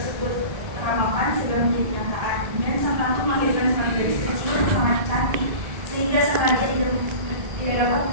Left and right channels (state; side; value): late; left; 1.4 ms